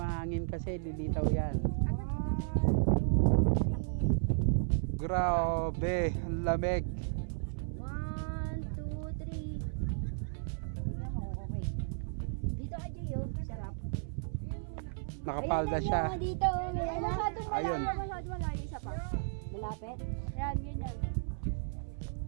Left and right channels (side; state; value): left; silent; 55 dB below the other